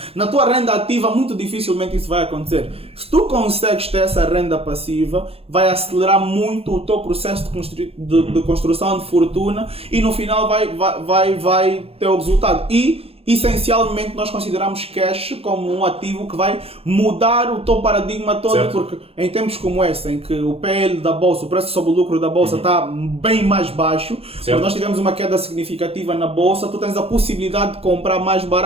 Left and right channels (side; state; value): left; late; 0.28 ms